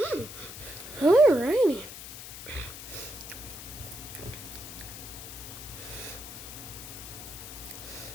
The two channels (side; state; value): left; noise; hiss, 11 dB below the sound